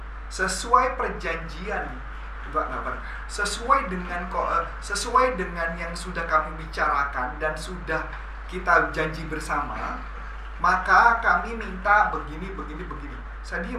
sesuai perjanjian, sesuai dengan yang sudah kami bicarakan dan sudah kita janji bersama, maka kami minta begini. Saya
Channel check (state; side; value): identical; both; correlation 1.00